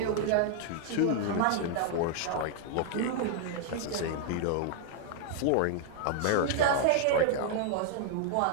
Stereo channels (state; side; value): different; both; correlation 0.00